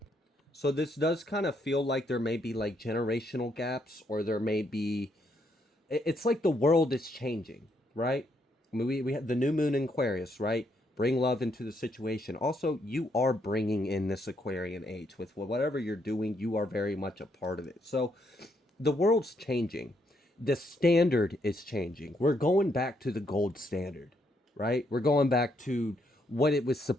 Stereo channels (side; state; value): both; normal; correlation 0.75